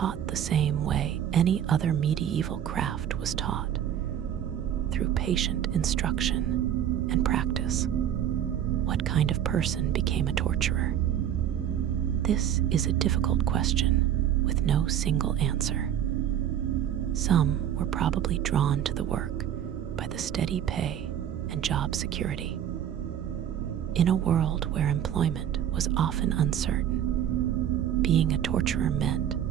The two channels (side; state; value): left; quieter; 10.1 dB